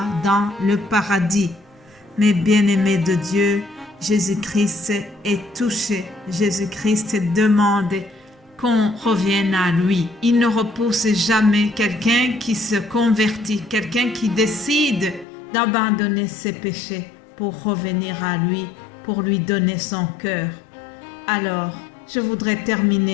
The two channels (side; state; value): right; drops out; at 15.2 s